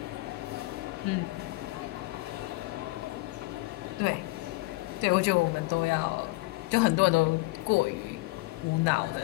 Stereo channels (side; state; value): right; quieter; 22.5 dB